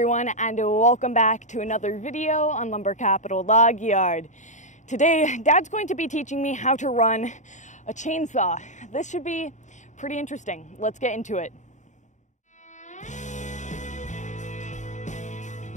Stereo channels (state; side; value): late; right; 0.35 ms